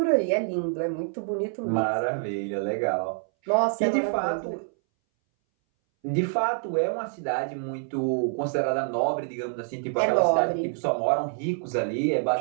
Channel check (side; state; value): left; silent; 60 dB below the other